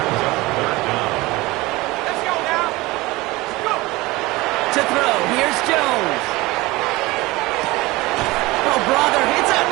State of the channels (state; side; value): quieter; left; 21.0 dB